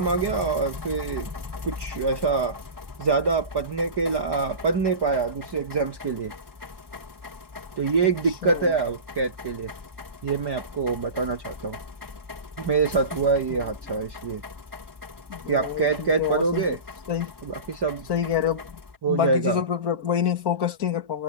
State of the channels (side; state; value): left; late; 1.1 ms